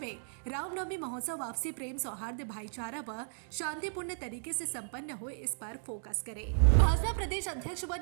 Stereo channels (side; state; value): left; silent; digital silence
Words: रामनवमी महोत्सव आपसी प्रेम, सौहार्द, भाईचारा व शांतिपूर्ण तरीके से संपन्न हो, इस पर फोकस करे। भाजपा प्रदेश अध्यक्ष व